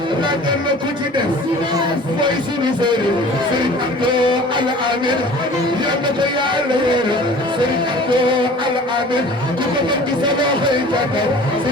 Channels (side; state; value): both; normal; correlation 0.44